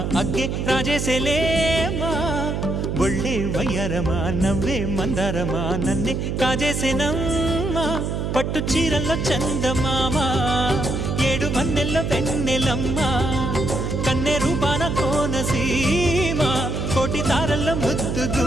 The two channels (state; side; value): noise; right; hum, 2 dB below the sound